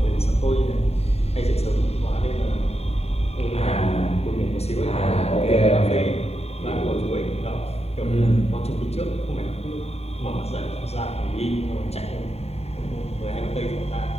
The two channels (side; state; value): right; late; 0.30 ms